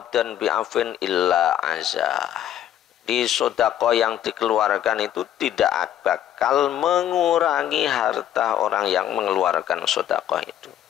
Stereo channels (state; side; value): quieter; right; 11.1 dB